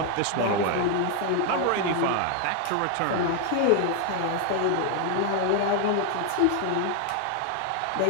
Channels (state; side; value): different; both; correlation 0.00